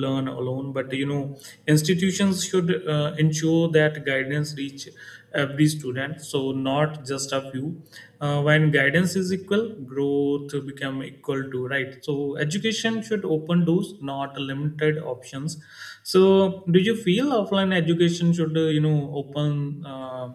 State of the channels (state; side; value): identical; both; correlation 1.00